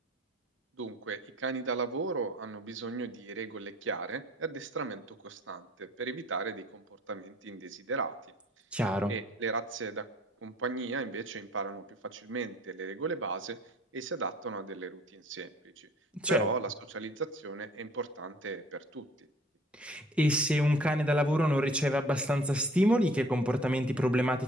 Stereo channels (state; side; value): normal; both; correlation 0.54